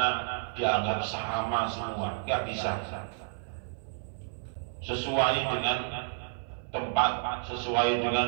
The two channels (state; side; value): silent; left; 57 dB below the other